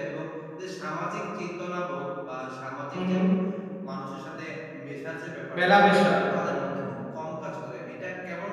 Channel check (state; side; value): identical; both; correlation 1.00